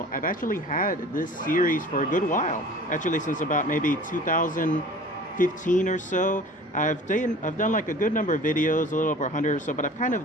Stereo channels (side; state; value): both; normal; correlation 0.44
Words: I've actually had this series for a good while, actually since about maybe 2015 or so. I've done like a good number of videos, a little over 100 or so, but I've kind